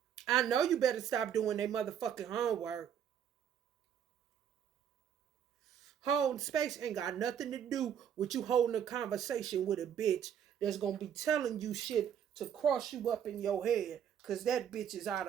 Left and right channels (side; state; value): left; quieter; 8.9 dB